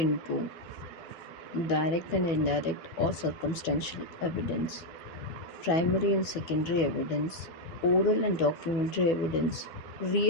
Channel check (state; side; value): late; right; 12 ms